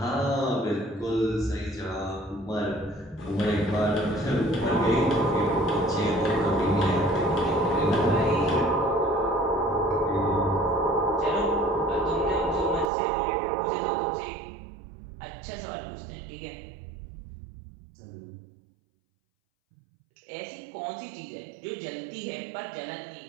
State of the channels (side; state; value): left; drops out; at 12.9 s